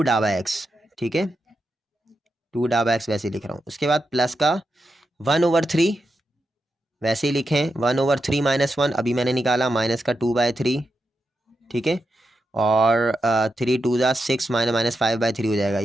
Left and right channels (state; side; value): normal; both; correlation 0.87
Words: डाबा(x), ठीक है, 2 डाबा(x) वैसे लिख रहा हूँ। उसके बाद प्लस का 1/3 वैसे ही लिखें, 1/3 माइनस 1 अभी मैंने निकाला, माइनस का 2/3, ठीक है, और 3 × 2 = 6 माइनस 5/3 हो जाएगा,